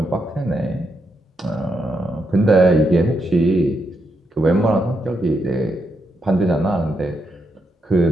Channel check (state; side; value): normal; both; correlation 0.81